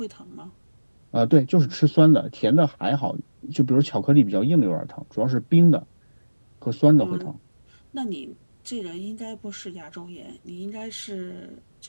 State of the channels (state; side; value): inverted; both; correlation -1.00